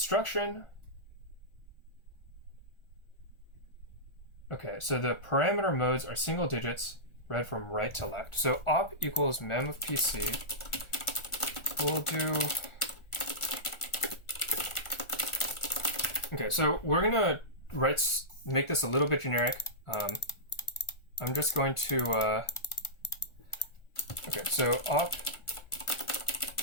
okay, so the parameter modes are single digits, read from right to left. So op equals mem of PC. We'll do, okay, so we're gonna make this a little bit generic. I'm just going to, okay, so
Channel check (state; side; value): late; right; 1.4 ms